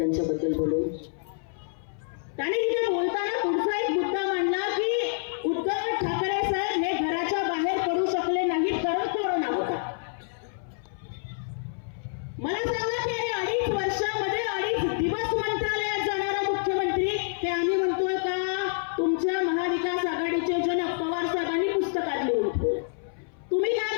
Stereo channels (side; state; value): right; silent; 58 dB below the other